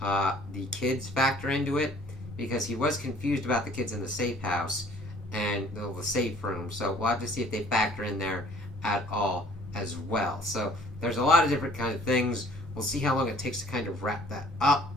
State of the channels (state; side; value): normal; both; correlation 0.55